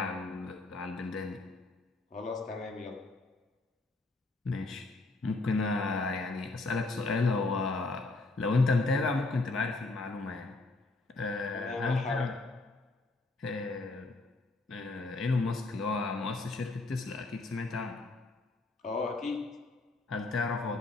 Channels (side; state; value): right; quieter; 3.3 dB